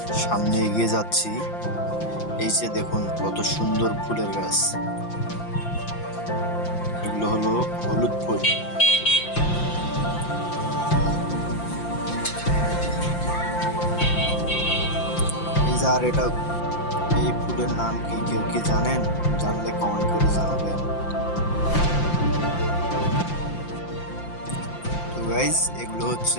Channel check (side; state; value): right; late; 5.8 ms